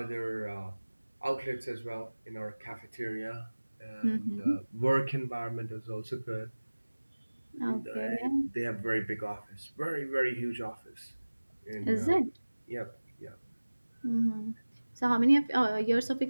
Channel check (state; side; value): inverted; both; correlation -1.00